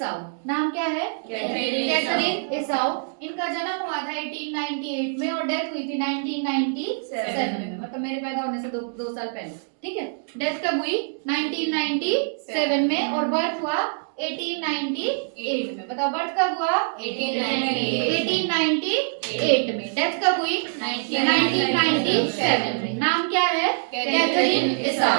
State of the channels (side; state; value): left; silent; digital silence